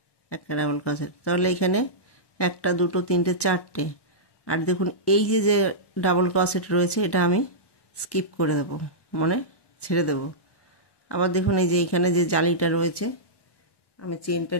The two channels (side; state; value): right; late; 1.1 ms